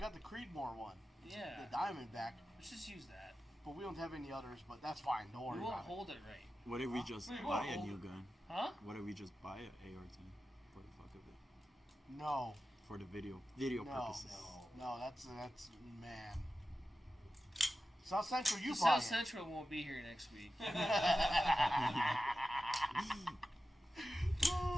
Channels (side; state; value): both; normal; correlation 0.92